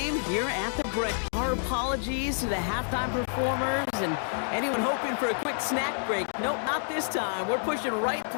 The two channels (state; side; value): silent; right; digital silence